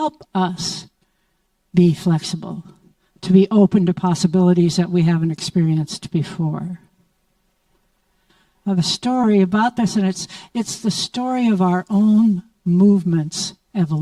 us be flexible, to be open to possibilities that we haven't experienced before. the story about this, and it's the story of our own movement's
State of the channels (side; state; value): both; identical; correlation 1.00